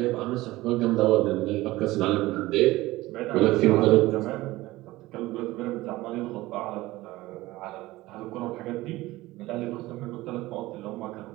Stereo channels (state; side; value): quieter; left; 18.4 dB